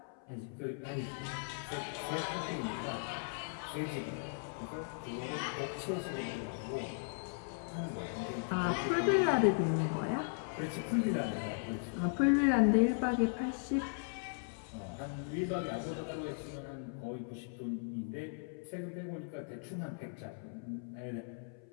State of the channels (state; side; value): silent; right; 53 dB below the other